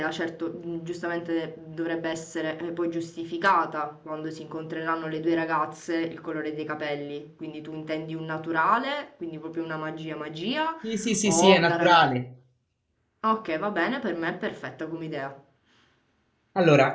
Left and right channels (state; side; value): identical; both; correlation 1.00